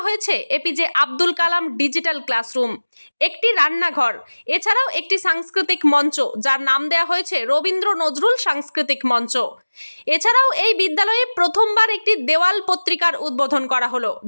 হয়েছে APJ Abdul Kalam digital classroom, একটি রান্নাঘর, এছাড়াও একটি সাংস্কৃতিক মঞ্চ যার নাম দেওয়া হয়েছে রবীন্দ্র নজরুল সাংস্কৃতিক মঞ্চ। এছাড়াও এই বিদ্যালয়ে প্রথমবার একটি দেওয়াল পত্রিকার উদ্বোধন করা হলো,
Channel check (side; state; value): both; inverted; correlation -1.00